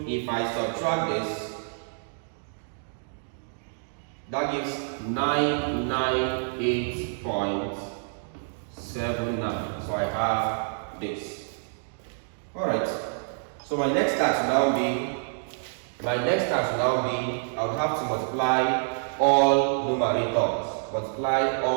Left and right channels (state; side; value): silent; left; digital silence